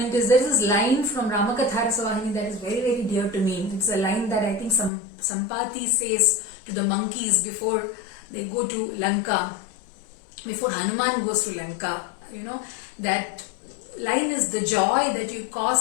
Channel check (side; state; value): right; drops out; at 4.9 s